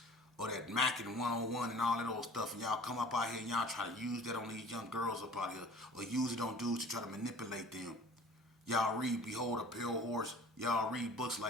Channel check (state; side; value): normal; both; correlation 0.46